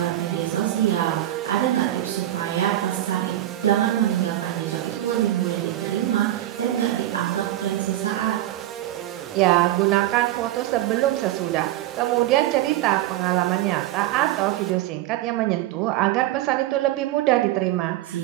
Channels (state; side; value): quieter; left; 14.2 dB